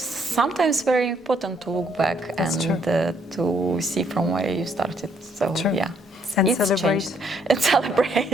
very important to look back to see from where you started. So yeah, and it's celebrate changed. And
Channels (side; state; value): both; normal; correlation 0.69